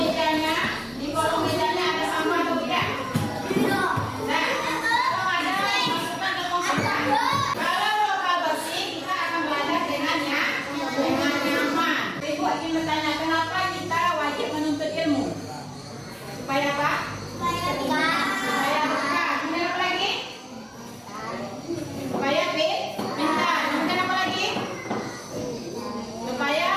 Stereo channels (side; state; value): both; identical; correlation 1.00